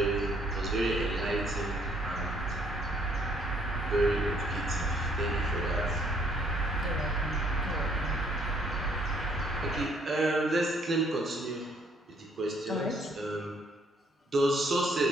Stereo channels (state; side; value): normal; both; correlation 0.65